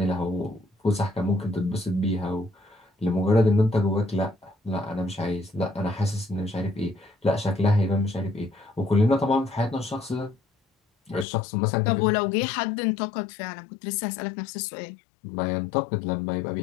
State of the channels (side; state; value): right; drops out; at 11.2 s